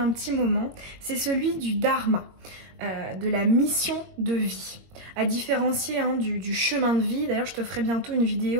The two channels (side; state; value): left; late; 22 ms